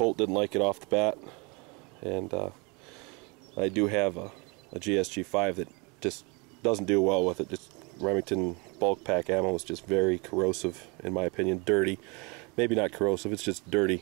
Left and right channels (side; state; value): left; quieter; 29.7 dB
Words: didn't like it off the bat, and I do have a GSG 5 that just doesn't do well with it. Just Remington bulk pack ammo is just very corrosive, in my opinion. Dirty, maybe not corrosive, it's just